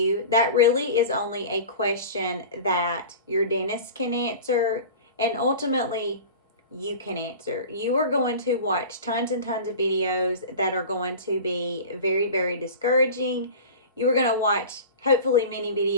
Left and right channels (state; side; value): inverted; both; correlation -0.35